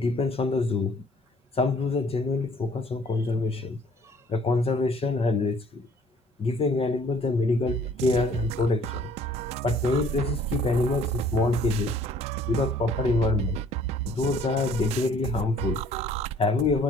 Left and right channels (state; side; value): normal; both; correlation 0.57